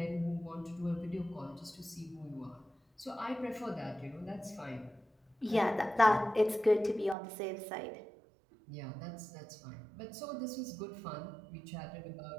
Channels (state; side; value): drops out; left; at 7.2 s